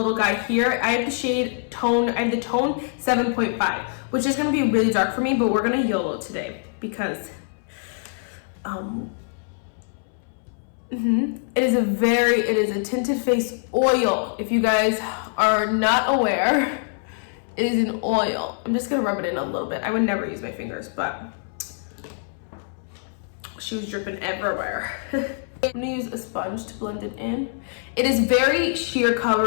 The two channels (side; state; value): right; silent; 62 dB below the other